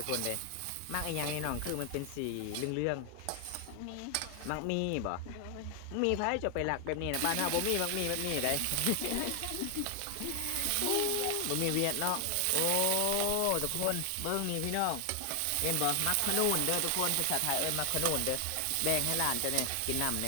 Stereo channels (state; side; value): different; both; correlation 0.00